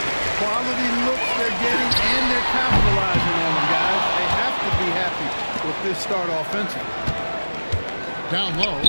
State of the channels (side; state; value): both; inverted; correlation -1.00